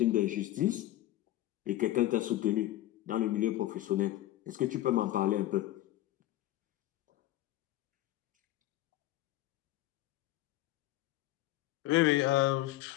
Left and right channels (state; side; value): quieter; right; 15.2 dB